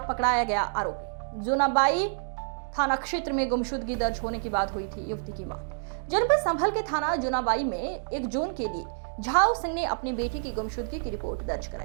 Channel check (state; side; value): silent; left; digital silence